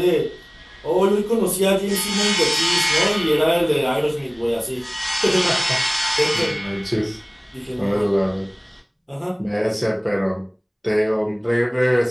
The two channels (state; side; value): identical; both; correlation 1.00